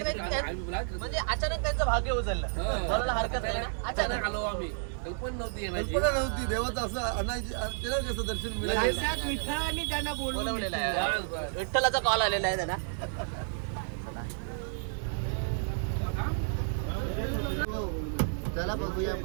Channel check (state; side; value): silent; left; digital silence